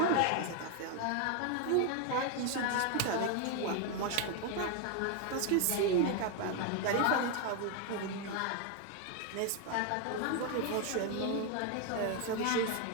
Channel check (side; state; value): both; different; correlation 0.01